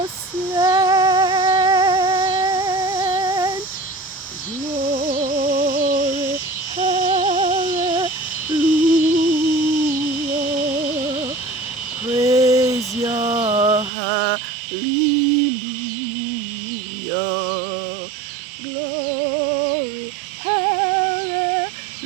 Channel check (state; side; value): drops out; left; at 13.9 s